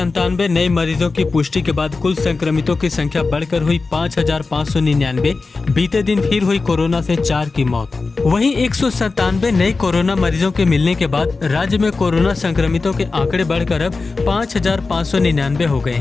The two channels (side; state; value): right; quieter; 4.0 dB